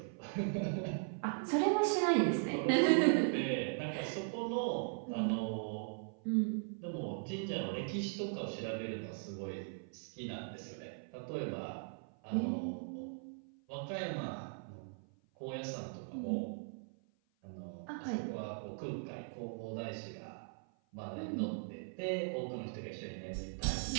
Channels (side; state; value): left; silent; 52 dB below the other